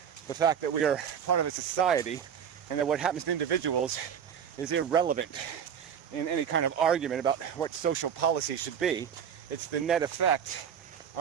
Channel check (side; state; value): left; quieter; 8.1 dB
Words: the fact that we are part of a society, and that what happens to individuals is irrelevant in any kind of argument about what social policy should be. It's the net effect